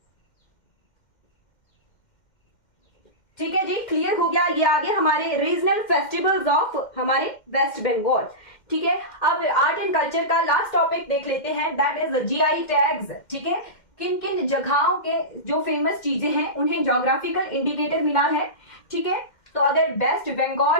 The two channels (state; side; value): late; right; 2.1 ms